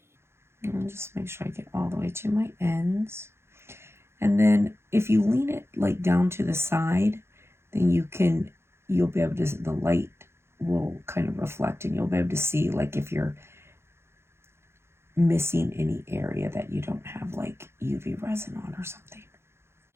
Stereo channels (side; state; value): left; late; 0.12 ms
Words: And just make sure I get all the way to my ends. And then if you lean it like down to the side, then you'll be able to, the light will kind of reflect, and you'll be able to see like if you're missing any area that you don't have like UV resin on or something.